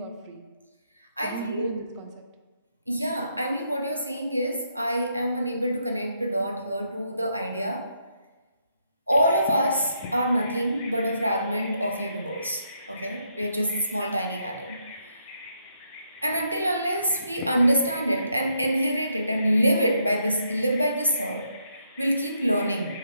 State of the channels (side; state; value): both; inverted; correlation -0.77